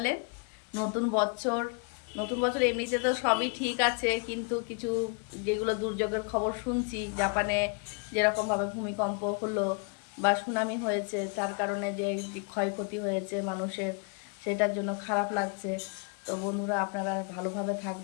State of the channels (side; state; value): right; quieter; 36.4 dB